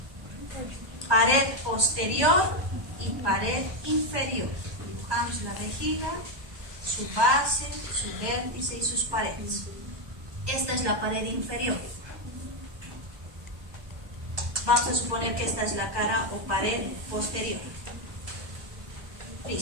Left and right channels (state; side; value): late; left; 1.2 ms